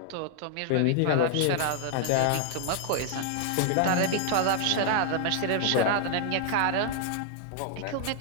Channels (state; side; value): different; both; correlation 0.00